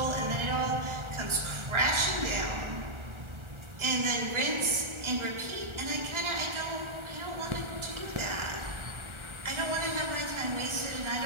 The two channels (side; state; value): left; late; 1.4 ms